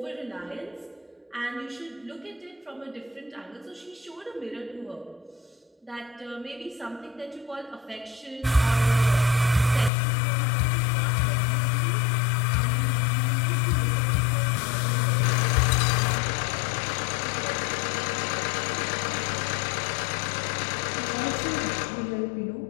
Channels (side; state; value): right; drops out; at 9.9 s